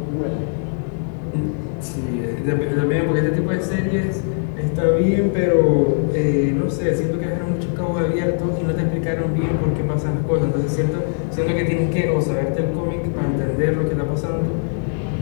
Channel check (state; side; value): silent; right; digital silence